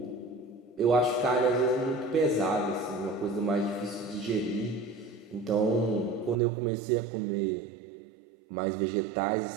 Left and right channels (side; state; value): left; drops out; at 6.4 s